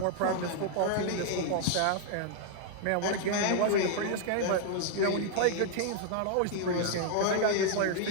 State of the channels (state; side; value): different; both; correlation 0.00